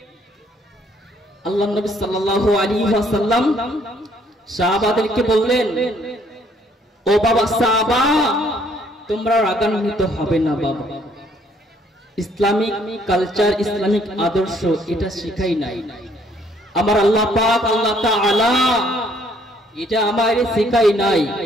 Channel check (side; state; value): both; normal; correlation 0.64